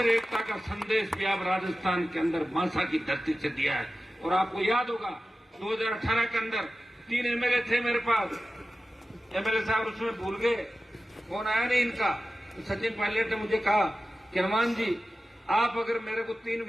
एकता का संदेश भी आप राजस्थान के अंदर मांसा की धरती से दिया है। और आपको याद होगा 2018 के अंदर 3 एमएलए थे मेरे पास, एमएलए साहब उसमें भूल गए, फोन आया नहीं इनका। तो सचिन पायलट ने मुझे कहा कि हनुमान जी आप अगर मेरे को 3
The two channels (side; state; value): both; normal; correlation 0.94